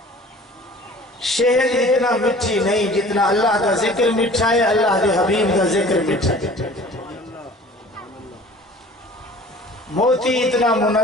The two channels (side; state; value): both; normal; correlation 0.46